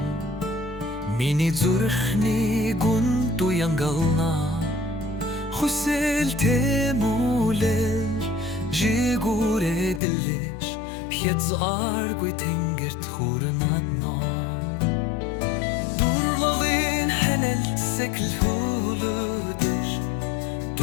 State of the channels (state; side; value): drops out; right; at 10.0 s